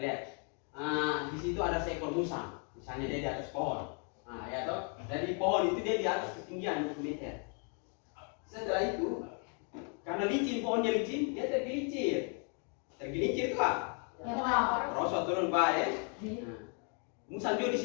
Di situ ada seekor musang. Misalnya dia di atas pohon. Ya toh. Dari pohon itu dia di atas ketinggian 20 meter. Setelah itu, karena licin, pohonnya licin, dia tergelincir. Tergelincir itu apa? Rosot turun bawah ya. Musang juga di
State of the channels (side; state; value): right; quieter; 39.6 dB